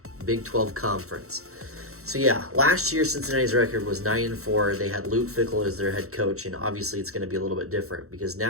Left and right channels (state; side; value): late; left; 0.64 ms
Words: Big 12 Conference. So yeah, last year Cincinnati's record was 9-4. They had Luke Fickell as their head coach, and obviously it's going to be a little bit different because